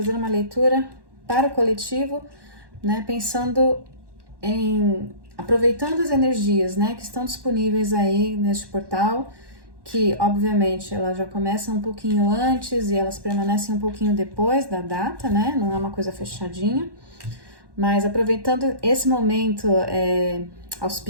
uma leitura para o coletivo, né, pensando em aproveitando as energias, né, que estão disponíveis aí neste portal, que obviamente elas já começam um pouquinho antes e elas permanecem um pouquinho depois da data, né, não é uma coisa fechadinha, mas aproveitando esse momento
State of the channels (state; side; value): late; left; 1.1 ms